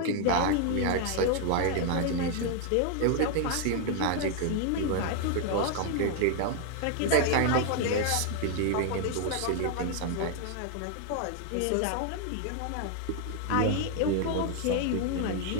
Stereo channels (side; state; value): both; different; correlation 0.00